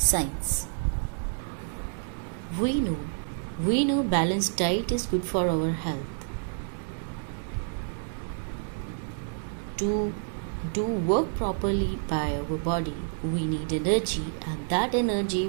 We know balanced diet is good for our health. To do work properly by our body, we need energy, and that energy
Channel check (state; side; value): silent; left; 59 dB below the other